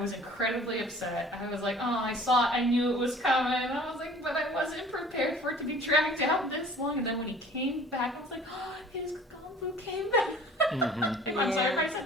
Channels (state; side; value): normal; both; correlation 0.49